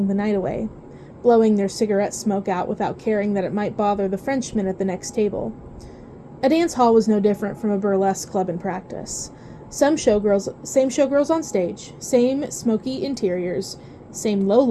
the night away, blowing their cigarette smoke out without caring that it might bother the Frenchmen at the next table. A dance hall was no different from a burlesque club in practice. Same showgirls on stage, same smoky interiors, same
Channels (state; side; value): identical; both; correlation 1.00